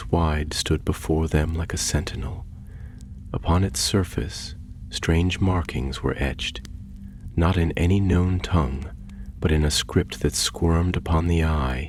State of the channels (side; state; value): both; identical; correlation 1.00